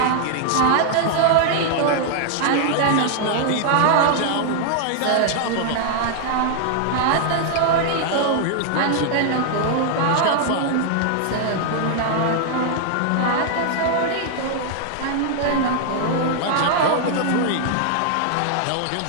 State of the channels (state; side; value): different; both; correlation -0.01